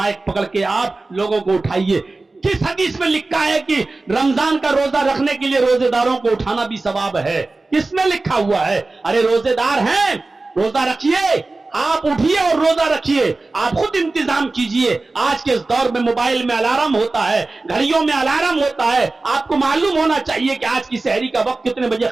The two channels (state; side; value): quieter; left; 3.4 dB